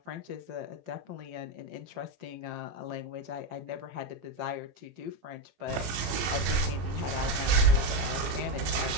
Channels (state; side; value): late; left; 17 ms